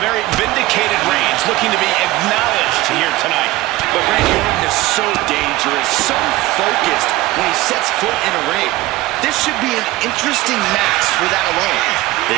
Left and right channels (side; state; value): left; quieter; 18.3 dB